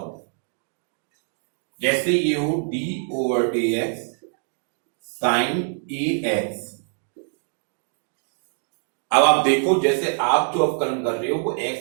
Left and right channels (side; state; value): left; silent; 60 dB below the other